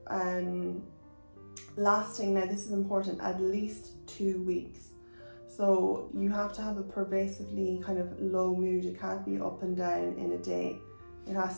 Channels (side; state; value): both; inverted; correlation -1.00